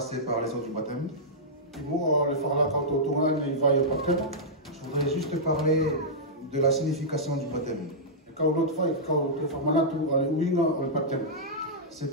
par les eaux du baptême, je voudrais juste parler de la signification du baptême.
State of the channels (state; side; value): normal; both; correlation -0.12